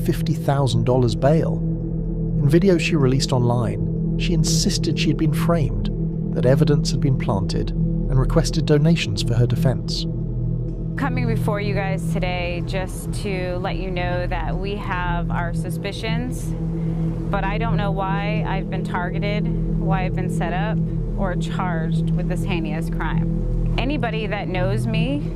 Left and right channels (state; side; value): identical; both; correlation 1.00